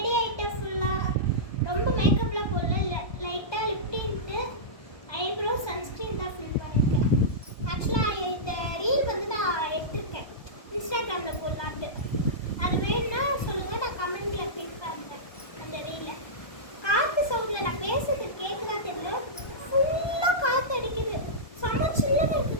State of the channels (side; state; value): right; late; 1.2 ms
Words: ஆகிட்டேன். ஃபுல்லாக ரொம்ப மேக்கப்லாம் போடல, லைட்டாக லிப்டின்ட்டு ஐப்ரோ சன்ஸ்க்ரீன் தான் ஃபில் பண்ணியிருக்கேன். ஆக்சுவலாக இந்த ரீல் வந்து நான் எடுத்திருக்கேன் இன்ஸ்டாகிராமில் போடலான்ட்டு. அது வேணும்னா சொல்லுங்கள், நான் கமெண்ட்டில் பின் பண்ணுறேன் அந்த ரீலை. காற்று சவுண்டில் நான் பேசுறது கேட்குதா தெரியல, ஃபுல்லாக காற்று அடிக்குது. செம்ம சில்லுன்னு